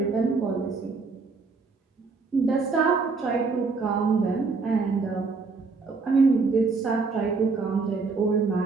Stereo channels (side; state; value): left; quieter; 4.4 dB